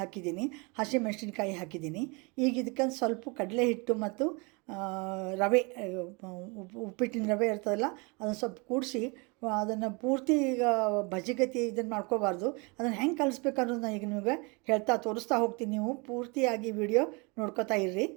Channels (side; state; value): left; quieter; 29.5 dB